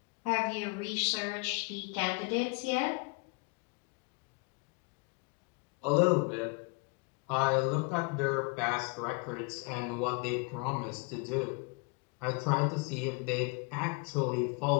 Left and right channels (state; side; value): quieter; right; 31.0 dB